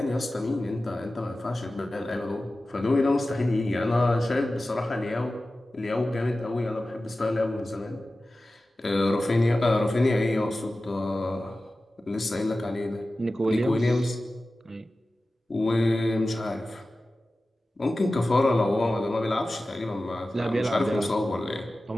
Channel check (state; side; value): normal; both; correlation 0.95